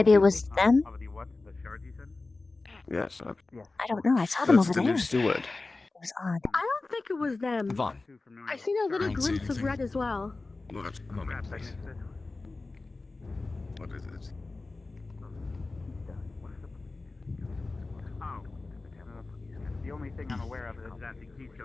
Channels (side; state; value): right; quieter; 3.4 dB